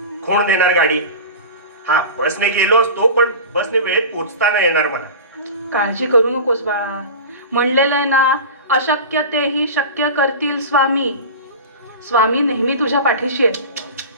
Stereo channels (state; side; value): inverted; both; correlation -0.31